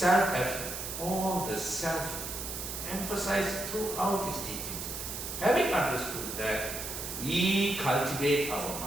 all the self emphasized throughout his teachings. Having understood that, we cultivate our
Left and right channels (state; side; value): noise; right; hiss, 6 dB below the sound